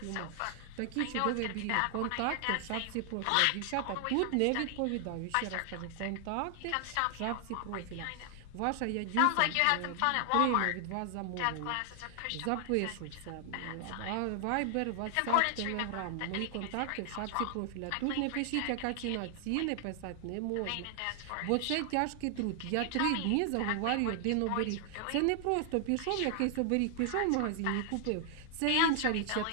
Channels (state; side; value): different; both; correlation 0.00